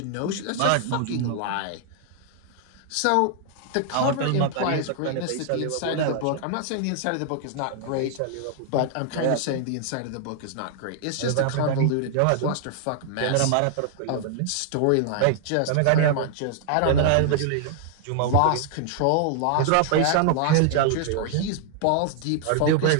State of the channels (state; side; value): different; both; correlation 0.00